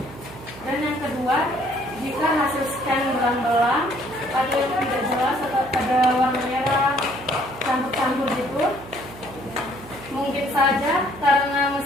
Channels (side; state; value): right; noise; hum, 17 dB below the sound